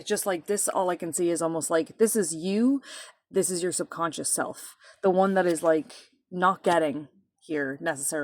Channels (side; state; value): both; identical; correlation 1.00